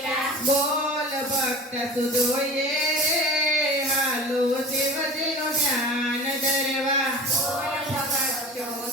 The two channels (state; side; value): normal; both; correlation 0.37